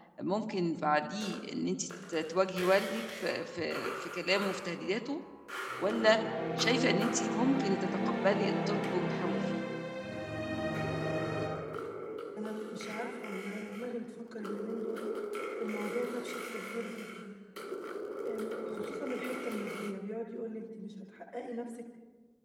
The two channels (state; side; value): identical; both; correlation 1.00